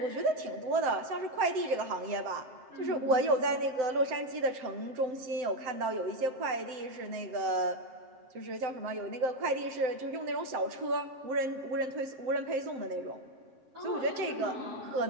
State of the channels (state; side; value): late; left; 7.8 ms